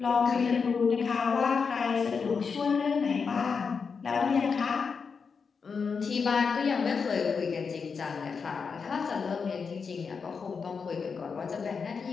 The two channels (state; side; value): quieter; right; 5.5 dB